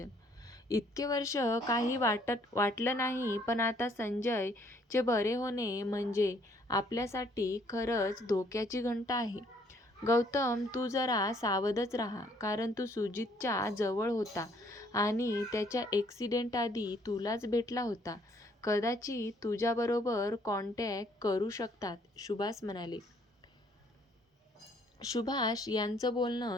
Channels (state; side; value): normal; both; correlation 0.64